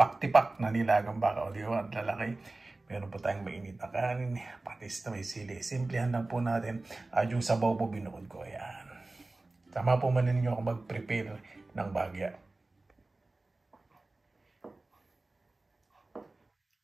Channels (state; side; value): quieter; left; 3.1 dB